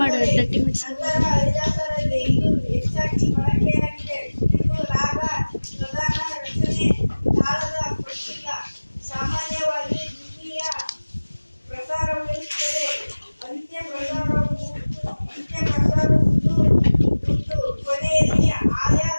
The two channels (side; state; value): both; inverted; correlation -1.00